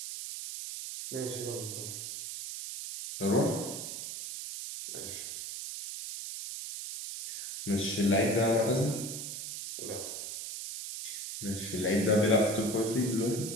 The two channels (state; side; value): noise; right; hiss, 7 dB below the sound